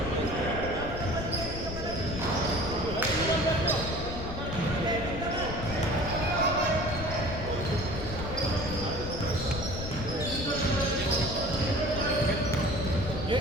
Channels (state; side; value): noise; left; rumble, 6 dB below the sound